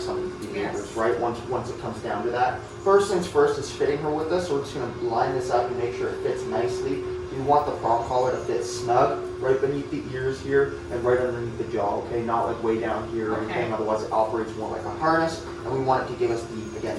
of these behaviors, right? Once it comes down to that. First things first is fitting her with this. So we're just going to line this up and make sure it fits nicely. You want the prong collar to fit snug right beneath the ears here and right underneath the jaw, okay? Not like way down here or anything, otherwise it operates more like a harness. And we want it to give us, the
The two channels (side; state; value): both; identical; correlation 1.00